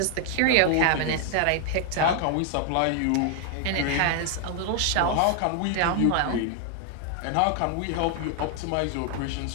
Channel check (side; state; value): both; different; correlation 0.00